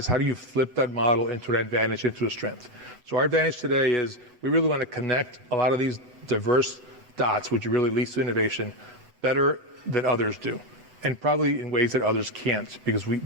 how do you flip that model into an advantage, into a strength. So our advantage today is we really want to connect a lot of these diverse dots, which really leads to innovation, better than others do, and probably in ways that others can't, because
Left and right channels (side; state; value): left; late; 7.8 ms